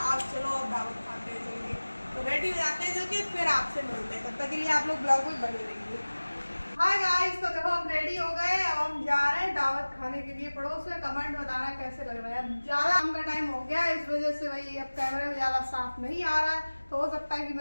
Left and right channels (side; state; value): both; inverted; correlation -1.00